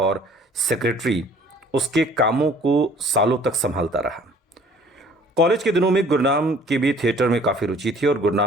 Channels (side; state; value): both; normal; correlation 0.54